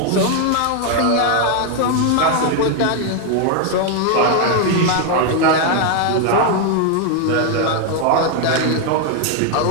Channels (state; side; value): different; both; correlation 0.01